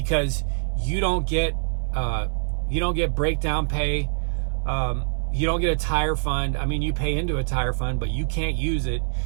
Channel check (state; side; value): silent; left; digital silence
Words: you don't get breakdown pay. You don't get a tire fund. I mean, you pay into a tire fund, but you can't use it.